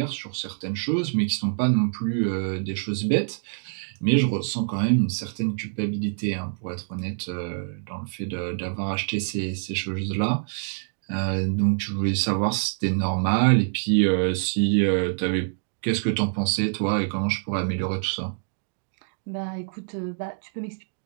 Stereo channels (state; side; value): silent; left; digital silence